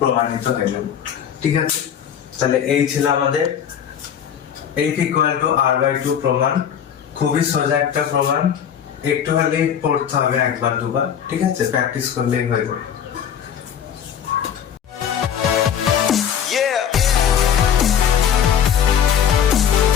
হয়ে গেল। ঠিক আছে, তাহলে এই ছিল আমাদের f = r/2 প্রমাণ। খুবই সোজা একটা প্রমাণ, একটু হলেই পড়তে হবে একবার দুবার। ঠিক আছে, প্র্যাকটিস করলেই হয়ে যাবে।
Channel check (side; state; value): right; quieter; 8.6 dB